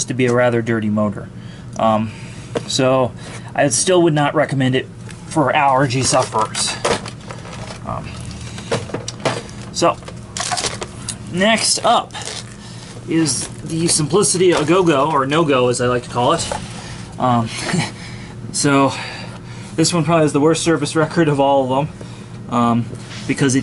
to be a rather dirty motor. So I still would not recommend it for allergy sufferers. So next up is the Simplicity A Go-Go, or No-Go as I like to call it. So this one probably has the worst service record of all of them because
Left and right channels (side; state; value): both; identical; correlation 1.00